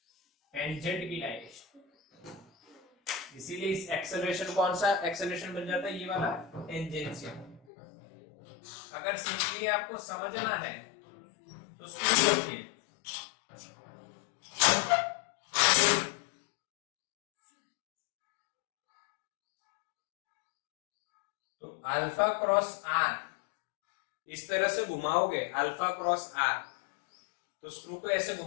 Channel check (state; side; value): drops out; right; at 7.6 s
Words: टेंजेंट की डायरेक्शन। इसीलिए इस एक्सेलरेशन कौन सा एक्सेलरेशन बन जाता है? ये वाला टेंजेंशियल। अगर सिंपली आपको समझना है तो स्कूल रखिए। तो अल्फा क्रॉस आर इस तरह से घुमाओगे, अल्फा क्रॉस आर, तो स्क्रू को ऐसे